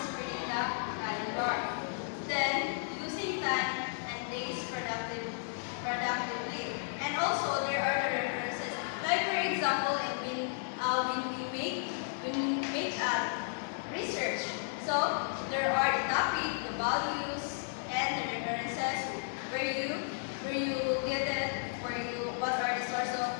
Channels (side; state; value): right; silent; digital silence